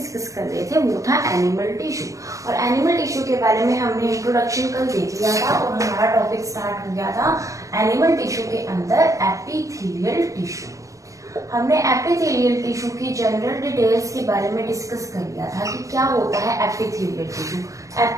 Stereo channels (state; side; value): late; left; 0.16 ms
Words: कर रहे थे वो था एनिमल टिश्यू। और एनिमल टिश्यू के बारे में हमने इंट्रोडक्शन कल देख लिया था और हमारा टॉपिक स्टार्ट हो गया था एनिमल टिश्यू के अंदर एपिथेलियल टिश्यू। हमने एपिथेलियल टिश्यू की जनरल डिटेल्स के बारे में डिस्कस कर लिया था कि क्या होता है एपिथेलियल टिश्यू।